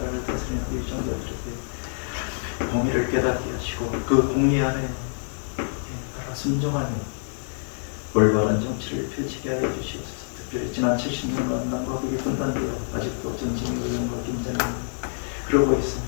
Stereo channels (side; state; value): right; silent; 57 dB below the other